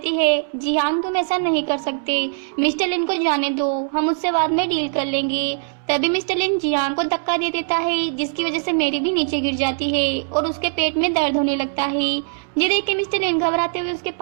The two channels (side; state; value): left; silent; 65 dB below the other